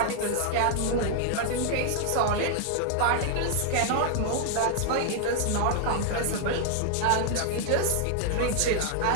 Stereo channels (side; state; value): both; different; correlation 0.00